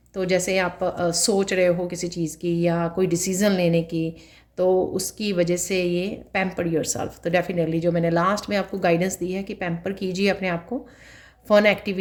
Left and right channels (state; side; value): identical; both; correlation 1.00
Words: तो जैसे आप सोच रहे हो किसी चीज़ की या कोई डिसीज़न लेने की, तो उसकी वजह से ये पैम्पर योरसेल्फ। तो डेफिनेटली जो मैंने लास्ट में आपको गाइडेंस दी है कि पैम्पर कीजिए अपने आप को फ़न